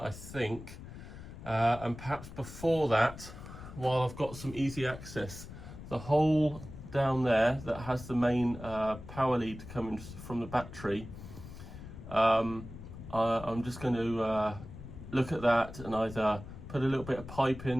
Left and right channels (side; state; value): left; noise; rumble, 13 dB below the sound